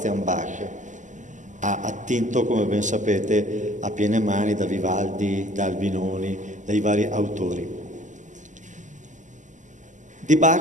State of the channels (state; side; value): late; left; 0.36 ms